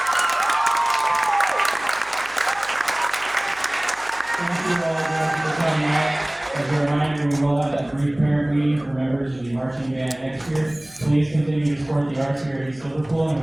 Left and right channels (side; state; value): right; noise; hum, 27 dB below the sound